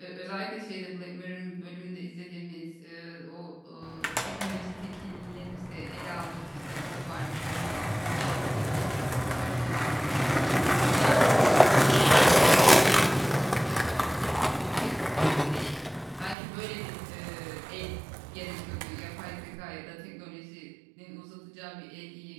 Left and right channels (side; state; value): left; drops out; at 16.4 s